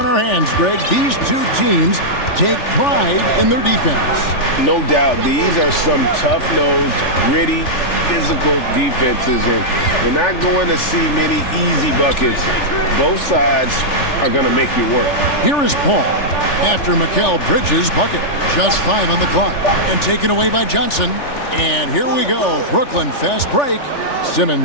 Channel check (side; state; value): right; late; 3.4 ms